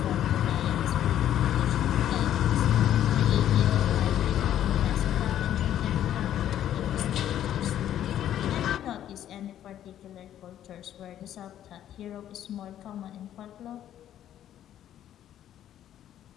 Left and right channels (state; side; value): quieter; right; 11.2 dB